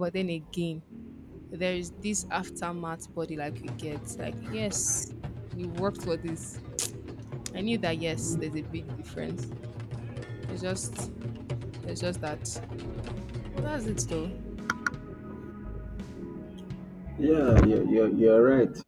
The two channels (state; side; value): identical; both; correlation 1.00